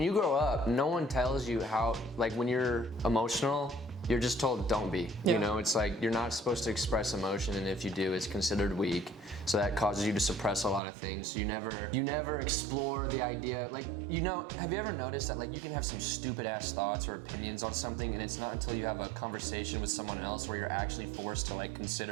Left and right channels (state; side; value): drops out; left; at 10.8 s